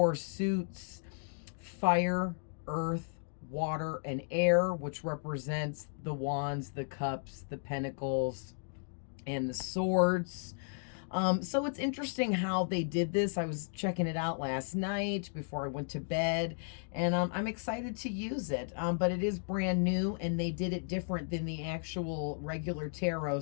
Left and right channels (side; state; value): right; silent; digital silence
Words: suits: fire, earth, water, and air, which represents the wands, the cups, the pentacles, and the swords. So it's interesting how they did this. I was checking it out last night before I went to bed, and I'm excited to use it. But it is brand new, and they did it different than the actual regular tarot,